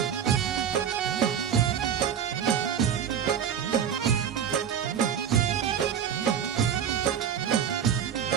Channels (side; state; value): left; quieter; 8.5 dB